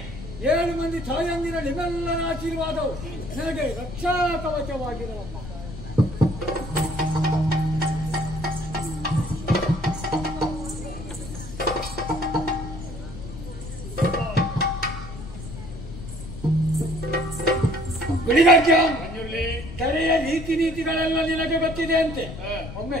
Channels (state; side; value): noise; left; rumble, 11 dB below the sound